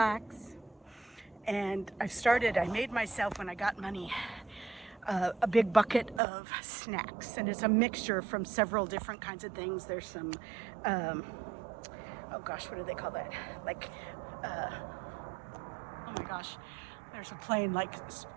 And I made myself, when I got money, a big bucket of snacks, and it's a mixture from several different kinds of things. There's some, oh gosh, what do they call that? Like, oh my gosh, there's a plane, like,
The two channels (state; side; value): drops out; left; at 6.2 s